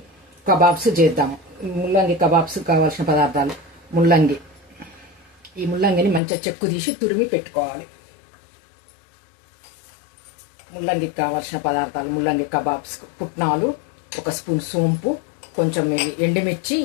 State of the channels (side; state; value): right; drops out; at 6.2 s